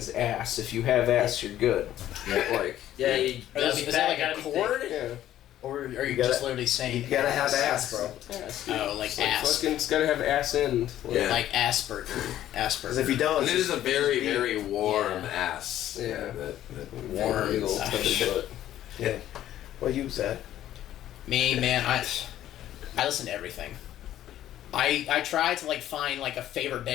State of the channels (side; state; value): right; quieter; 12.5 dB